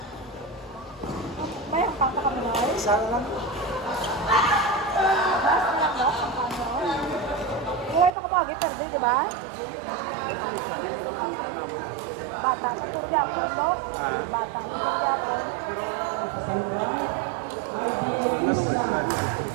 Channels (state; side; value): drops out; left; at 8.1 s